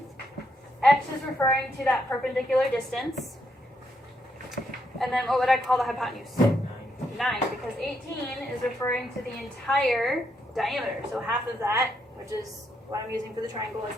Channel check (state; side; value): normal; both; correlation 0.78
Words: X is referring to that perpendicular distance. And then what would I call the hypotenuse? 9, because 18 is referring to the entire diameter. So half of that, which is what I'm using for the triangle, is